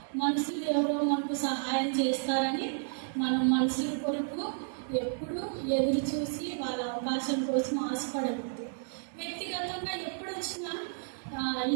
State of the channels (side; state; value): left; silent; digital silence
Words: మనుషులు ఎవరో మనకు సహాయం చేస్తారని మనం మనుషుల కొరకు ఎప్పుడు ఎదురు చూసి వాళ్ళ అవకాశం కోసం ఆశపడకూడదు. వ్యక్తిగతంగా ఎప్పుడు వచ్చినా